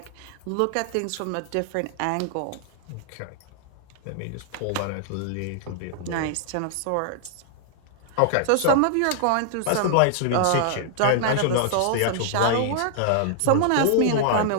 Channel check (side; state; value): both; different; correlation -0.01